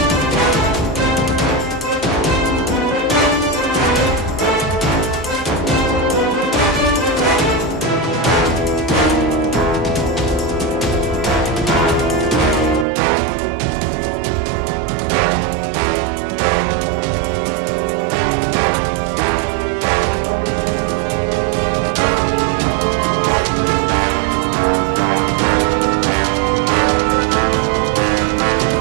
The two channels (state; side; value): drops out; left; at 12.9 s